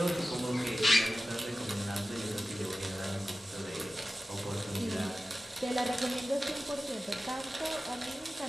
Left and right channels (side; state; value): both; normal; correlation 0.95